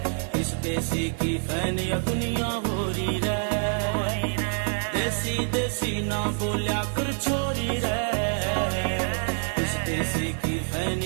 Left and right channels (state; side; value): silent; left; digital silence